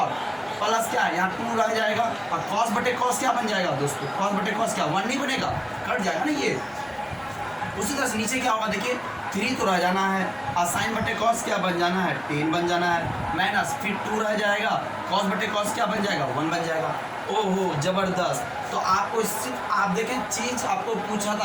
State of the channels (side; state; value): both; identical; correlation 1.00